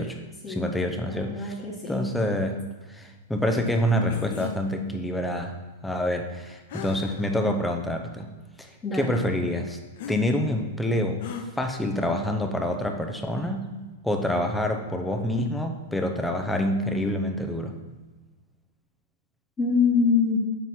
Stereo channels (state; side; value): normal; both; correlation 0.47